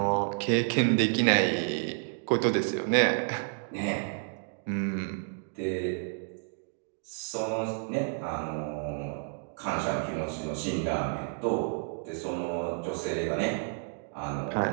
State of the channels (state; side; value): silent; left; 58 dB below the other